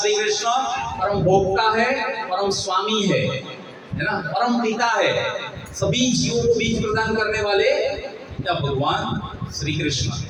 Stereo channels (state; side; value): identical; both; correlation 1.00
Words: कृष्ण, परम भोक्ता है, परम स्वामी है ना, परम पिता है, सभी जीवों को बीज प्रदान करने वाले या भगवान श्री कृष्ण।